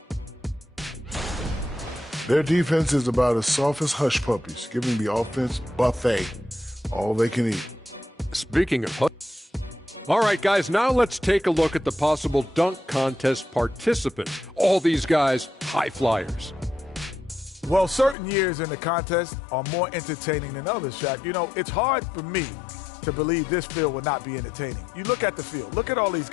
Their defense is about as soft as hush puppies, giving the offense buffet, all they can eat. Speaking of hush. All right, guys, now let's take a look at the possible dunk contest participants. All these guys, high flyers. Well, certain years in the contest are more entertaining than others, Shaq. You know, it's hard for me to believe this field will not be entertaining. You look at the field. Look at all these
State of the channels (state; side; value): drops out; right; at 18.2 s